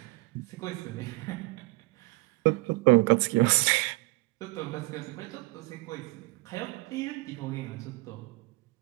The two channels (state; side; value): quieter; left; 24.7 dB